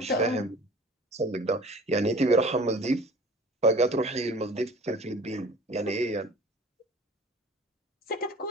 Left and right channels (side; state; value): both; normal; correlation 0.45